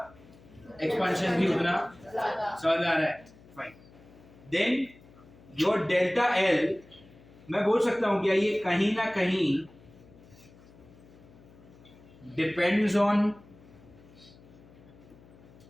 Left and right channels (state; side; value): noise; left; hum, 24 dB below the sound